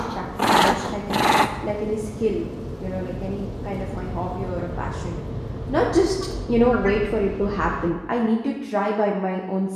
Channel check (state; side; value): identical; both; correlation 1.00